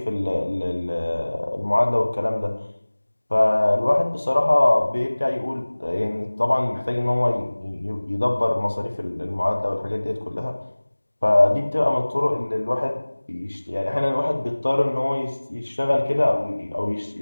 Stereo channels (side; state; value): both; inverted; correlation -1.00